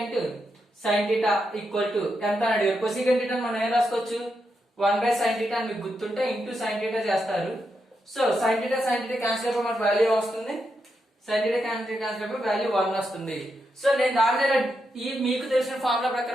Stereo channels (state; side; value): normal; both; correlation 0.84